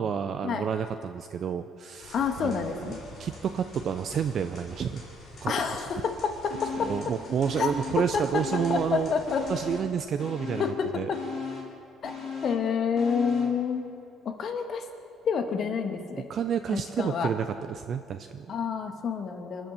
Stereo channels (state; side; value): normal; both; correlation 0.65